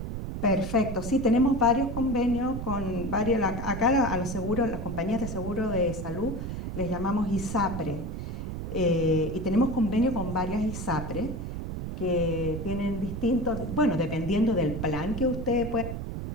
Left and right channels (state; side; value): noise; right; rumble, 5 dB below the sound